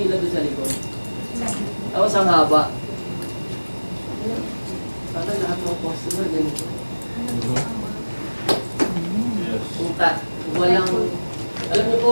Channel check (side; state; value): both; inverted; correlation -1.00